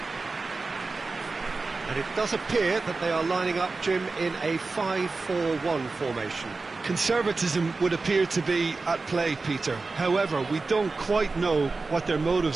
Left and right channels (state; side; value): quieter; left; 3.8 dB